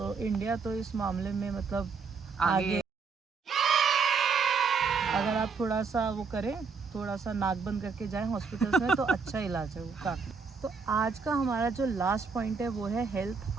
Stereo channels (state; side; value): quieter; left; 5.2 dB